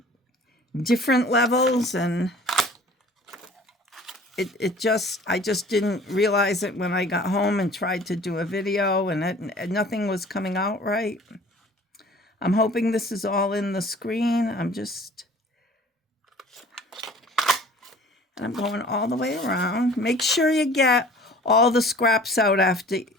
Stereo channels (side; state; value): both; normal; correlation 0.48